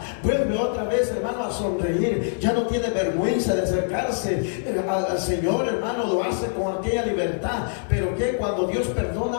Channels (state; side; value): silent; right; 62 dB below the other